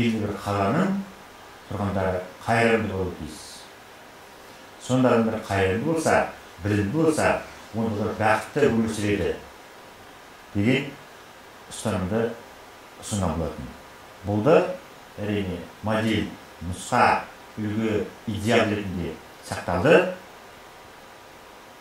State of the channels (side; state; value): both; identical; correlation 1.00